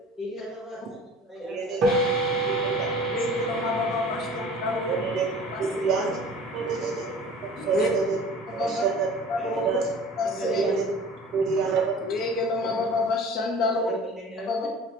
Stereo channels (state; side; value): normal; both; correlation 0.43